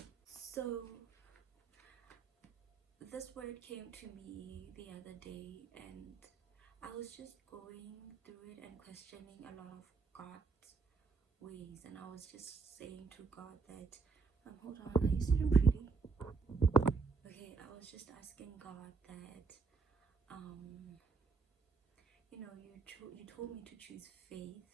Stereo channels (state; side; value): quieter; left; 4.8 dB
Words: So this word came to me the other day, and I was just going through it and questioning a lot of God's ways, and I was just saying to God that hold on, are you sitting pretty? Okay, I was just asking God that you told me to choose